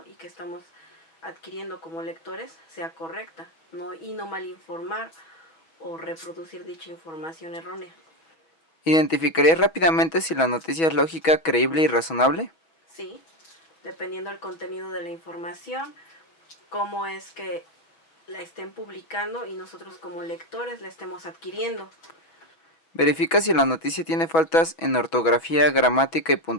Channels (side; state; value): right; late; 6.2 ms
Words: y que estamos adquiriendo como lectores sea correcta, y no malinformar o reproducir dicha información errónea. ¿Identificarías rápidamente si la noticia es lógica, creíble y razonable? Sí, dependiendo del contenido de la información, cómo es que la estén publicando y nosotros como lectores la estemos adquiriendo. ¿Verifica si la noticia tiene faltas en ortografía, gramática y